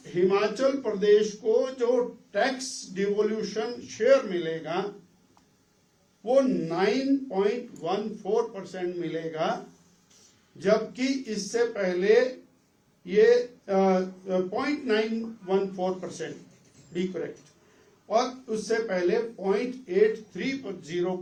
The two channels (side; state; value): both; identical; correlation 1.00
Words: हिमाचल प्रदेश को जो टैक्स डिवोल्यूशन शेयर मिलेगा वो 9.14% मिलेगा, जबकि इससे पहले ये 0.914% बी करेक्ट, और उससे पहले